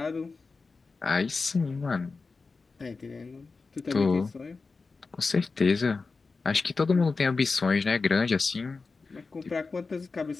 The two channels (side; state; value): right; quieter; 4.2 dB